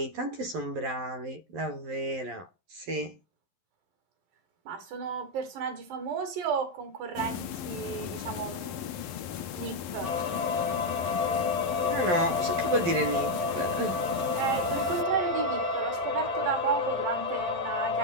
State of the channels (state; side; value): late; left; 11 ms